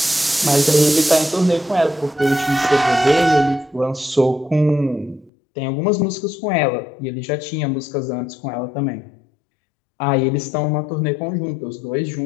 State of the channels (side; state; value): right; drops out; at 5.3 s